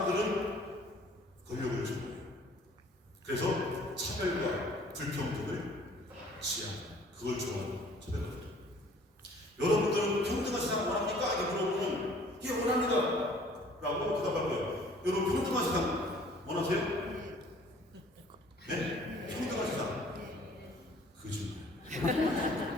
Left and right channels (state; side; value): normal; both; correlation 0.54